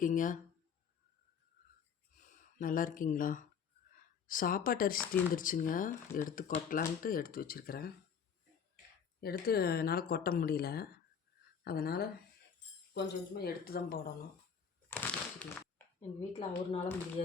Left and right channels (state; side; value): quieter; right; 7.0 dB